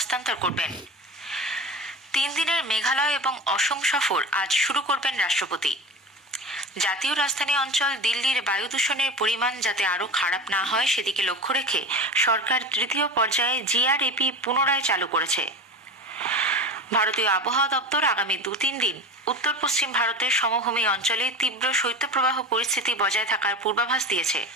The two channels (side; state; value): both; normal; correlation 0.30